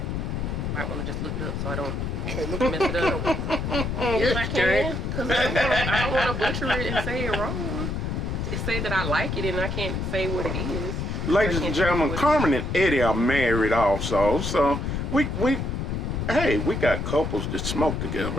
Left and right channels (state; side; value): noise; left; rumble, 2 dB below the sound